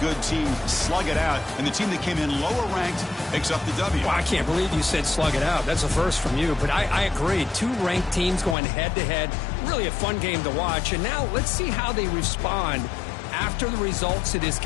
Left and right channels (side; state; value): right; drops out; at 8.6 s